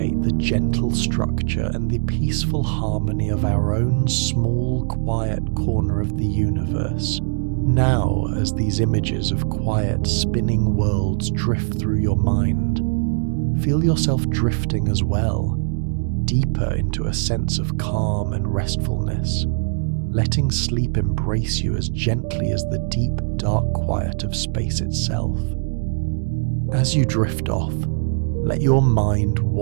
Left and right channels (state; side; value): silent; left; 65 dB below the other